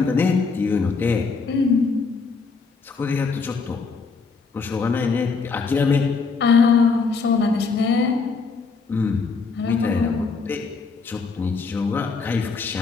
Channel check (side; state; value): right; quieter; 4.7 dB